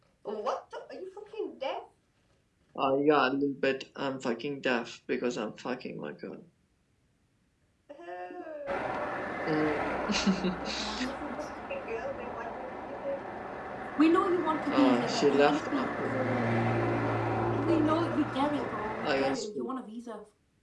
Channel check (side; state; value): both; identical; correlation 1.00